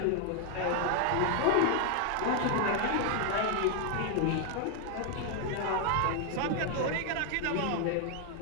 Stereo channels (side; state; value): both; different; correlation 0.00